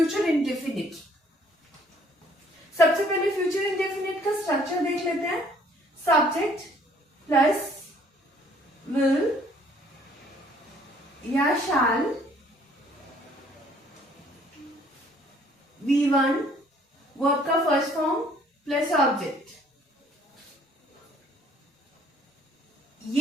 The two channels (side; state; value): both; normal; correlation 0.60